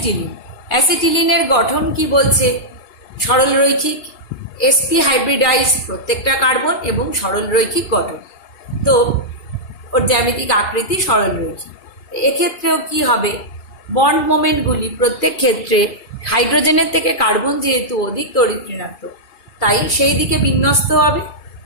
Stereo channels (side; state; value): right; late; 2.4 ms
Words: অ্যাসিটিলিনের গঠন কি বলছে, সরল রৈখিক। sp হাইব্রিডাইজ প্রত্যেকটা কার্বন এবং সরল রৈখিক গঠন, তো ওর জ্যামিতিক আকৃতি সরল রৈখিক। এক্ষেত্রেও কি হবে, বন্ড মোমেন্টগুলি প্রত্যেক ক্ষেত্রে হাইড্রোজেনের থেকে কার্বন যেহেতু অধিক তড়িৎ ঋণাত্মক, তাই সেই দিকে বিন্যস্ত হবে